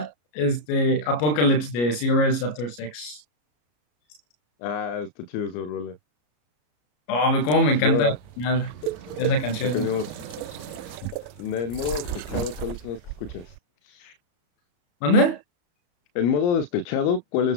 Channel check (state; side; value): late; right; 33 ms